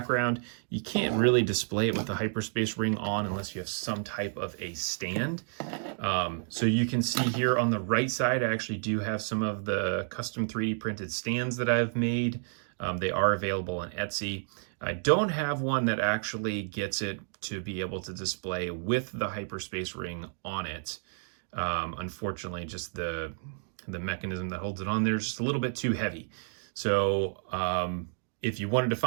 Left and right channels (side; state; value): left; silent; digital silence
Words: you can't really display it with the hyperspace ring on unless you have some type of a stand. So you can see here on the right side, I actually do have some of the custom 3D printed stands that I've made. They are available on Etsy. I don't have one that actually gets it to be able to display with the hyperspace ring on it. Unfortunately, just the mechanism that holds it on there is just a little bit too heavy. So if you wanted to